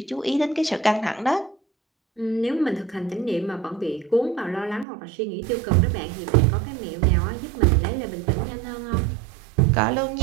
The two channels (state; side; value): drops out; left; at 4.9 s